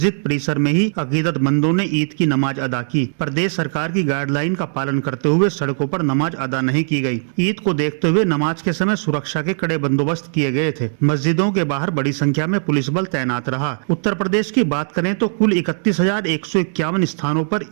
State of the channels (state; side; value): silent; left; digital silence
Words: परिसर में ही अकीदतमंदों ने ईद की नमाज अदा की। प्रदेश सरकार की गाइडलाइन का पालन करते हुए सड़कों पर नमाज अदा नहीं की गई। ईद को देखते हुए नमाज के समय सुरक्षा के कड़े बंदोबस्त किए गए थे। मस्जिदों के बाहर बड़ी संख्या में पुलिस बल तैनात रहा। उत्तर प्रदेश की बात करें तो कुल 31,151 स्थानों पर